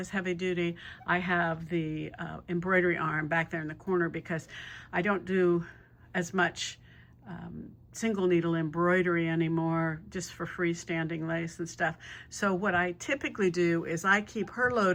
heavy duty. I have the embroidery arm back there in the corner because I don't do as much single needle embroidery anymore, just for freestanding lace and stuff. So what I typically do is I keep her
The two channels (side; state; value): both; identical; correlation 1.00